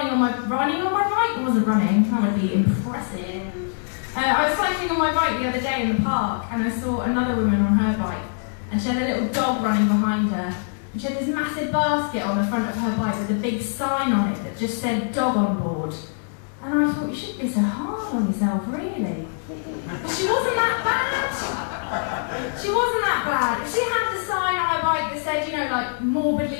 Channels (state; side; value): silent; right; digital silence